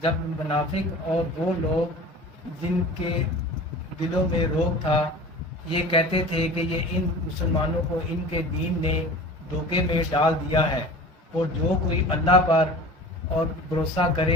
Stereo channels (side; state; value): both; normal; correlation 0.39